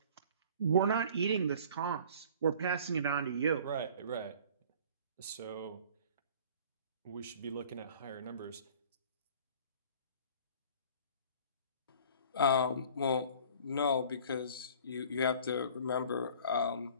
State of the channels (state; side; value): inverted; both; correlation -0.48